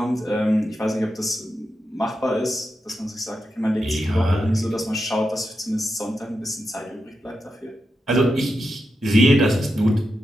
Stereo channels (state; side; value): normal; both; correlation 0.87